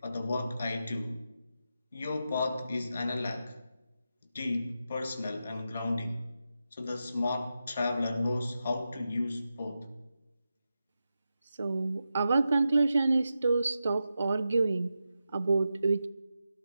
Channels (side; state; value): both; inverted; correlation -0.90